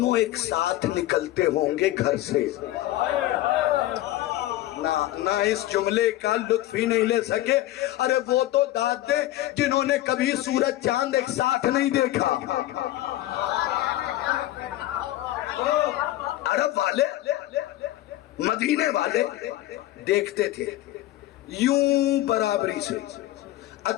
एक साथ निकलते होंगे घर से, ना इस जुमले का लुत्फ ही नहीं ले सके। अरे वो तो दादे जिन्होंने कभी सूरज चांद एक साथ नहीं देखा। अरब वाले, मदीने वाले देखते थे यूं बराबरी से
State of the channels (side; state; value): right; quieter; 15.3 dB